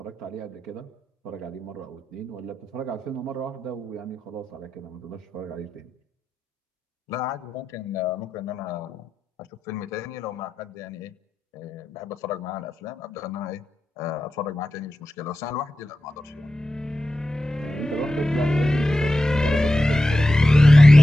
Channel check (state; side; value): normal; both; correlation 0.92